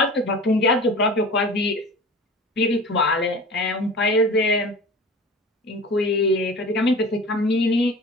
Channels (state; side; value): normal; both; correlation 0.37